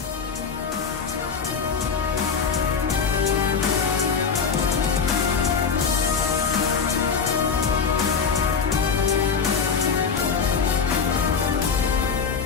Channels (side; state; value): right; quieter; 5.9 dB